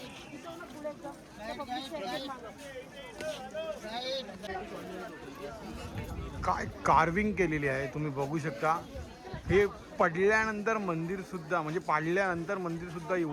काय कार्विंग केलेली आहे तुम्ही बघू शकता. हे पडल्यानंतर मंदिर सुद्धा, म्हणजे पाडल्यानंतर मंदिर सुद्धा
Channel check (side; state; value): both; identical; correlation 1.00